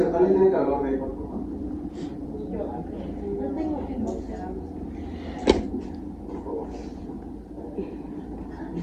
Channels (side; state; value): both; identical; correlation 1.00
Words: ¿alguien tiene calor de ahí, por favor?